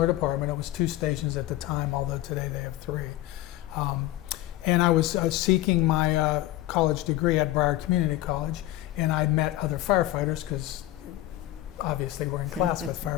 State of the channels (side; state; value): right; quieter; 15.3 dB